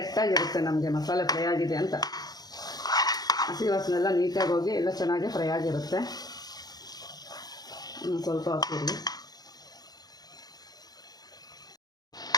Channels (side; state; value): right; late; 0.19 ms